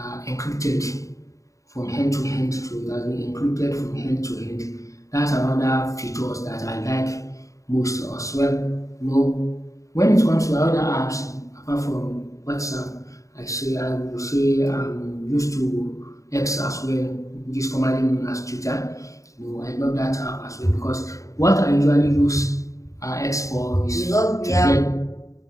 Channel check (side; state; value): right; late; 0.16 ms